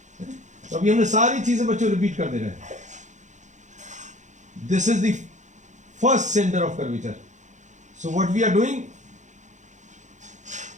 तो अभी हमने सारी चीजें बच्चों रिपीट कर दे रहे हैं. This is the first centre of curvature. So what we are doing,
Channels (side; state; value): left; late; 0.35 ms